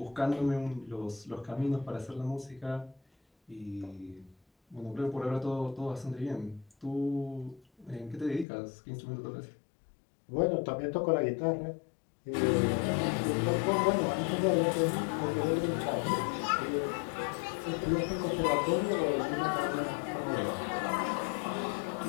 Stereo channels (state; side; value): drops out; right; at 8.5 s